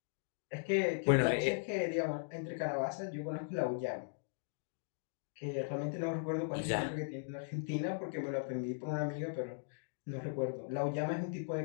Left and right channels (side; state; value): right; silent; digital silence